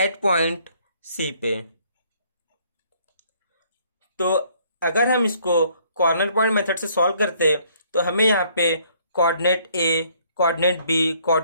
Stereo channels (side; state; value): both; inverted; correlation -0.63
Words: पॉइंट C पे। तो अगर हम इसको कॉर्नर पॉइंट मेथड से सॉल्व करते तो हमें यहाँ पे coordinate A, coordinate B,